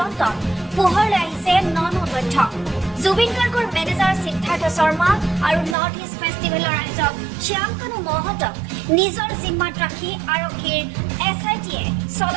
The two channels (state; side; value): drops out; left; at 5.8 s